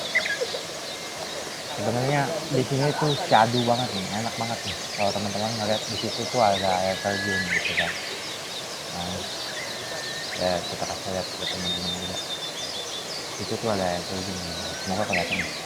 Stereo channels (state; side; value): identical; both; correlation 1.00